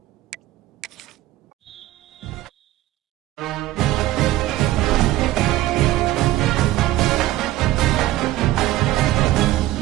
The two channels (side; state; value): left; quieter; 15.7 dB